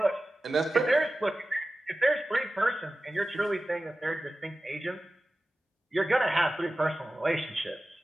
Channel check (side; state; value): both; normal; correlation 0.95